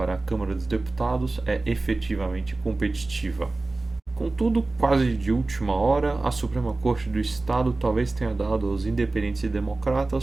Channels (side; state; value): left; quieter; 3.2 dB